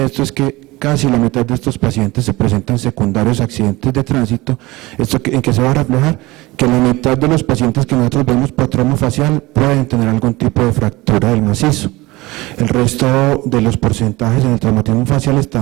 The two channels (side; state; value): left; quieter; 20.9 dB